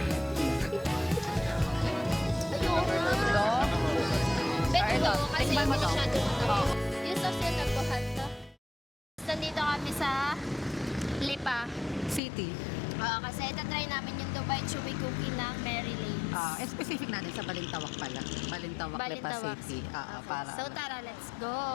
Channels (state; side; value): drops out; right; at 12.2 s